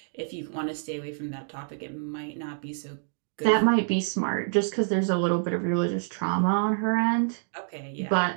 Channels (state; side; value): silent; left; digital silence